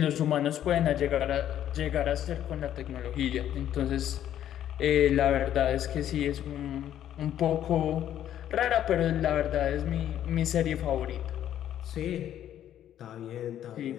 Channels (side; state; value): right; quieter; 11.1 dB